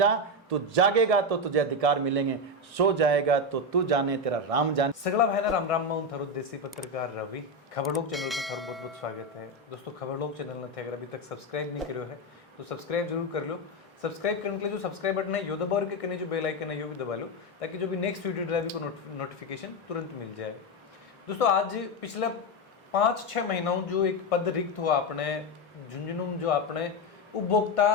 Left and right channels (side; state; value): both; normal; correlation 0.10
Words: तू जागेगा तो तुझे अधिकार मिलेंगे, सो जाएगा तो तू जाने तेरा राम जाने। सगला भाई राम राम मैं थारो देसी पत्रकार रवि। खबरलोक चैनल पर थारो बहुत बहुत स्वागत है। दोस्तों खबरलोक चैनल ने अगर अभी तक सब्सक्राइब नहीं करो है तो सब्सक्राइब जरूर कर लो। सब्सक्राइब करने के लिए जो सब्सक्राइब बटन है यो दबा और के जो बेल आइकन है यो भी दबा लो, ताकि जो भी नेक्स्ट वीडियो ड्राइव को नोटिफिकेशन तुरंत मिल जाए। दोस्तों आज पिछले 5-6 महीनों जो एक पद रिक्त हुआ अपने झुंझुनू, जो अपने उपभोक्ता